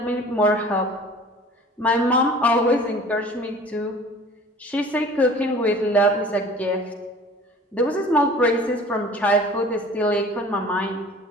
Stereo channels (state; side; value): normal; both; correlation 0.46